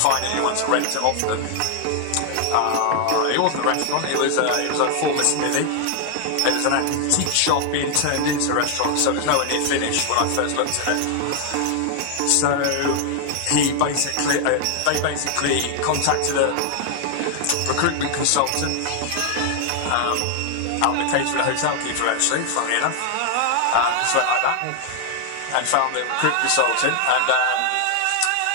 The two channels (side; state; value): both; different; correlation 0.00